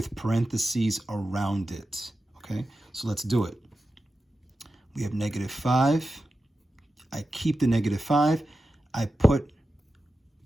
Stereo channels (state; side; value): normal; both; correlation 0.92